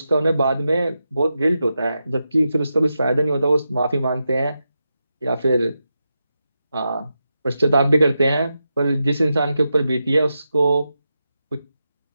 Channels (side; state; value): both; inverted; correlation -0.88